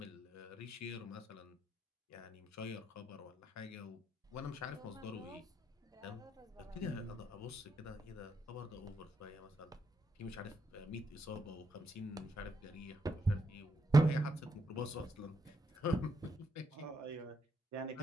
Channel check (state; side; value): normal; both; correlation 0.79